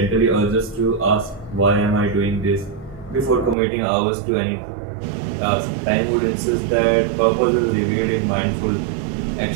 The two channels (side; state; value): left; drops out; at 3.6 s